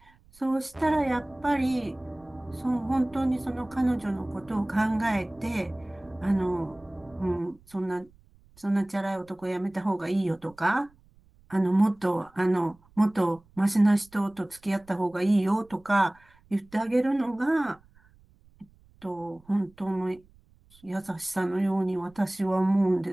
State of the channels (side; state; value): right; noise; rumble, 29 dB below the sound